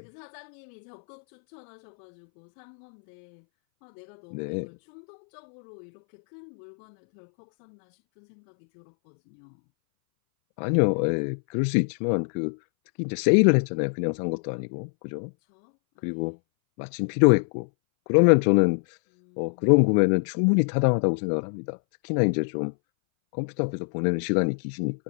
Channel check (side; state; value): right; silent; 62 dB below the other